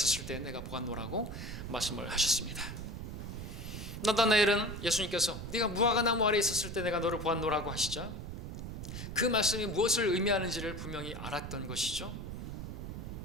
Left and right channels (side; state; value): right; noise; rumble, 7 dB below the sound